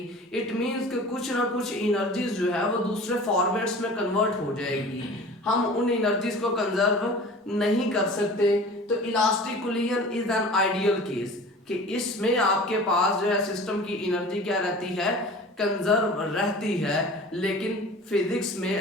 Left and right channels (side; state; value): both; normal; correlation 0.41